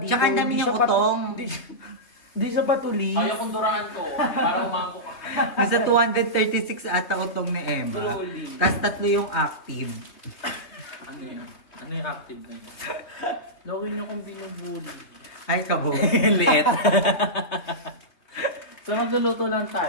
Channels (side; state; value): right; late; 3.4 ms